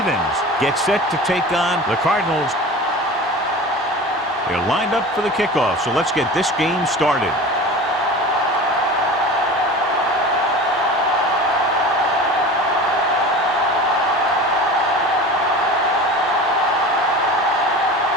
get set to take on the Cardinals. They're lined up for the kickoff, so let's get this game started.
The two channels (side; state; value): both; normal; correlation 0.35